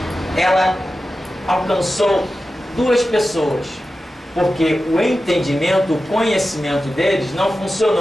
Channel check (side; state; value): both; normal; correlation 0.93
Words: ela alcançou 2 pessoas, porque o entendimento, o conhecimento deles não